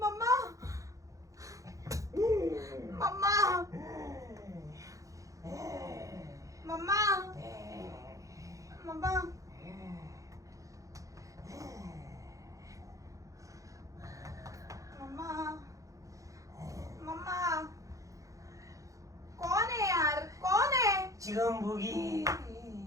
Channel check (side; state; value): left; late; 0.16 ms